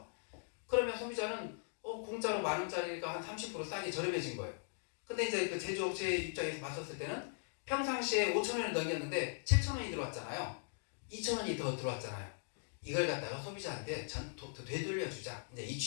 그러면 소비자는 공짜로 10,000원짜리가 한 30% 싸게 저렴해진 거예요. 근데 이제 그 제조업체 입장에서 봤었을 때는 평상시에 5,000원을 넘겼는데 7,000원이 들어왔잖아요. 2,000원이 더 들어왔잖아요. 이걸 갖다가 소비자한테 되돌려주자. 이제 이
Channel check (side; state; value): right; silent; digital silence